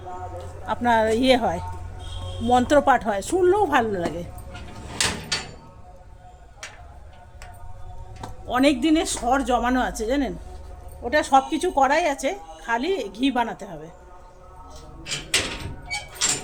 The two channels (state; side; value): identical; both; correlation 1.00